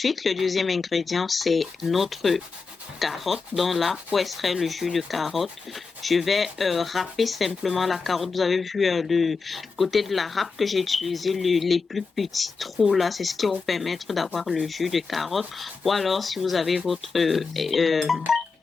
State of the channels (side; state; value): right; quieter; 4.7 dB